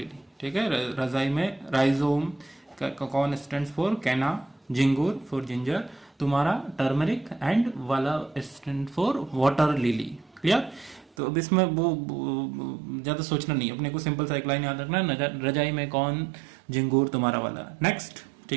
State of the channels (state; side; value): drops out; left; at 11.1 s